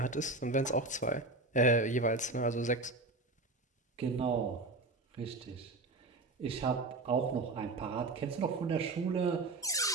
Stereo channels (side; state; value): left; quieter; 3.2 dB